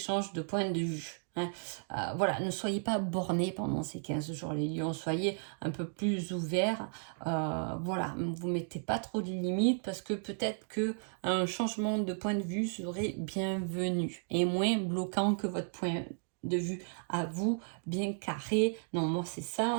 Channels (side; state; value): left; silent; 55 dB below the other